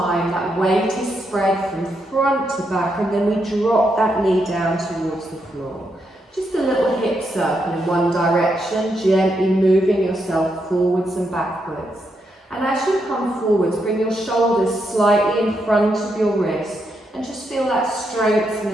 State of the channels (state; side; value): normal; both; correlation 0.81